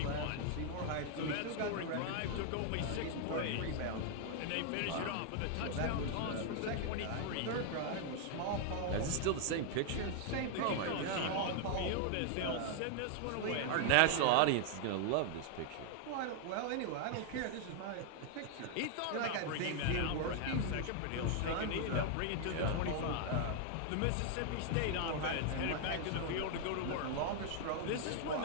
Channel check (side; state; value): both; different; correlation 0.00